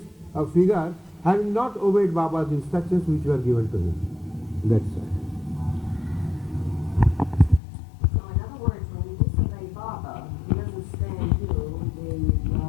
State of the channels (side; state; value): right; drops out; at 7.6 s